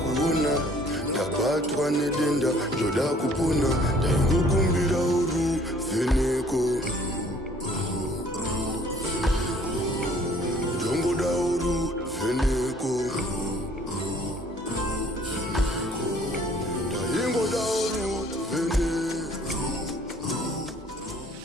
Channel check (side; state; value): both; normal; correlation 0.57